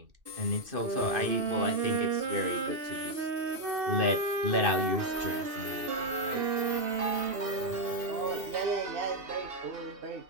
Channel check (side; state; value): left; late; 2.6 ms